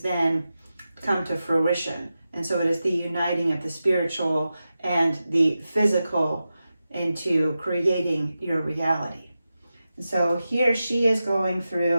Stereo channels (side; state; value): both; inverted; correlation -0.92